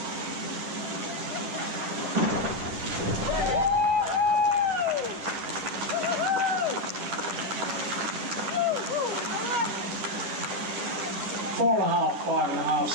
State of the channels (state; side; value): late; left; 10 ms